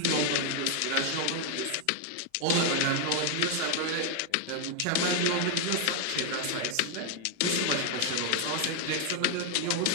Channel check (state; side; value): different; both; correlation 0.01